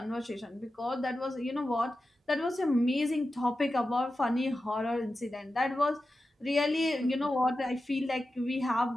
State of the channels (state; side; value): normal; both; correlation 0.92